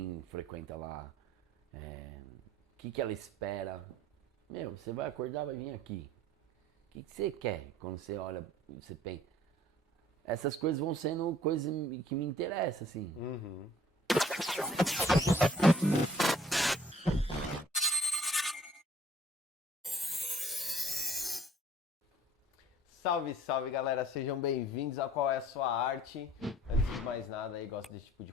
frequenta lá, o que ela espera. Meu, você vai acordar, vai vir aqui. O que você quer quando você olha, você pensa? Essas coisas vão sendo coisas que me interessam, assim. Uhum. Salve, salve galera, sejam bem-vindos a Qual é a Sua Arte. Antes de mais nada aí, gosta desse tipo de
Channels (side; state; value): both; normal; correlation 0.55